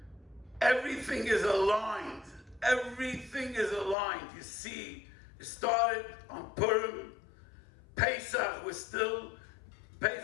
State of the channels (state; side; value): drops out; right; at 4.0 s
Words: everything is aligned. Everything is aligned. You see, it started on Purim, Pesach, we're still